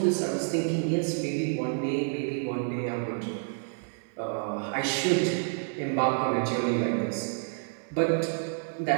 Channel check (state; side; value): silent; left; 59 dB below the other